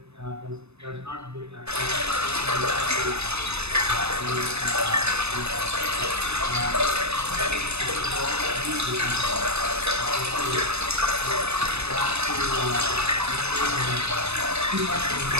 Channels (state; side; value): late; left; 0.80 ms